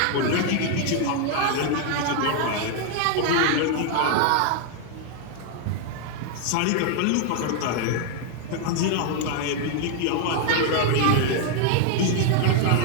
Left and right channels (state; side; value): different; both; correlation 0.00